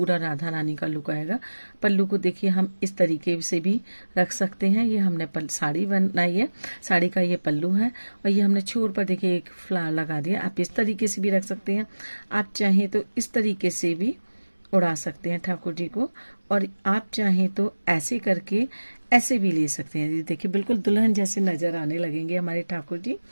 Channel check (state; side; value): inverted; both; correlation -1.00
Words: राधा रानी का लुक आएगा। पल्लू को देखिए हम इस तरीके से भी रख सकते हैं। ये हमने साड़ी बनाई है, साड़ी का ये पल्लू है। और ये हमने छोर पर देखिए एक फ्लावर लगा दिया। आप इस तरीके से भी रख सकते हैं, आप चाहें तो इस तरीके से भी उड़ा सकते हैं ठाकुर जी को। और आप चाहें तो ऐसे करके ऐसे भी ले सकते हैं। देखिए बिल्कुल दुल्हन जैसे नजर आने लगेंगे हमारे ठाकुर जी।